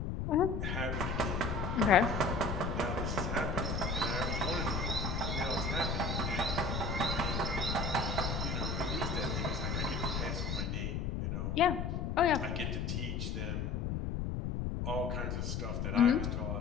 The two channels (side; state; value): left; noise; rumble, 1 dB below the sound